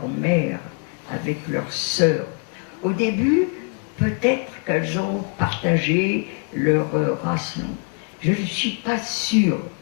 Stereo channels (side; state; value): right; quieter; 37.1 dB